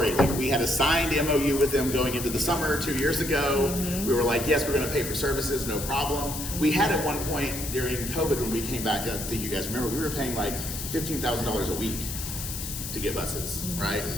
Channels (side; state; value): left; noise; hiss, 7 dB below the sound